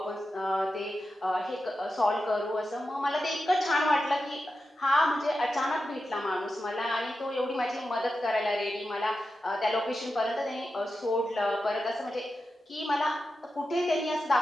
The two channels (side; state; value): both; normal; correlation 0.90